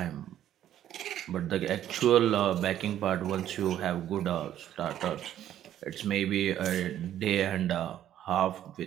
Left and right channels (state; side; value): quieter; left; 11.4 dB